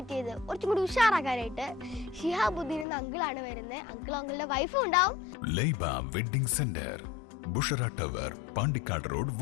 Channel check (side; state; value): right; drops out; at 2.9 s